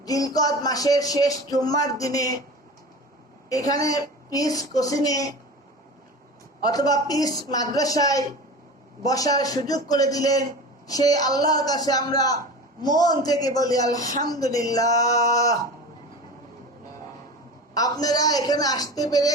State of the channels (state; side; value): normal; both; correlation 0.33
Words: জিলকদ মাসের শেষ জুম্মার দিনে এখানে পিস কোচিনে অথবা পিস মাদ্রাসায় বসার সুযোগ করে দিলেন। সেই আল্লাহর কাছে আমরা মন থেকে বলি আলহামদুলিল্লাহ। আপনারা এখানে আসতে পেরে